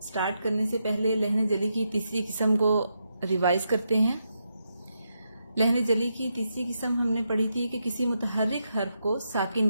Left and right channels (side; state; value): both; inverted; correlation -0.83